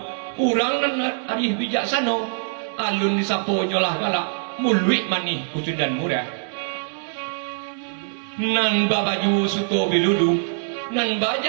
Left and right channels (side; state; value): left; silent; 63 dB below the other